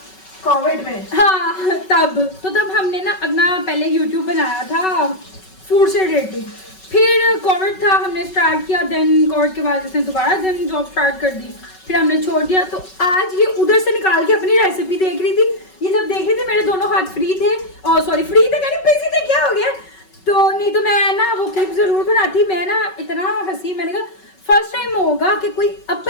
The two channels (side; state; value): right; late; 5.3 ms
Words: कोविड में, हाँ तब हमने ना अपना पहले यूट्यूब बनाया था फूड से रिलेटेड, फिर कोविड था, हमने स्टार्ट किया, देन कोविड के बाद इसने दोबारा देन जॉब स्टार्ट कर दी, फिर हमने छोड़ दिया। तो आज ये उधर से निकाल के अपनी रेसिपी देख रही थी, ये जब देख रही थी मेरे दोनों हाथ फ्री थे, और सॉरी फ्री थे यानी बिजी थे, क्या हो गया, तो नहीं तो मैं ना वो क्लिप ज़रूर बनाती। मैं ना इतना हंसी, मैंने कहा फर्स्ट टाइम होगा कि कोई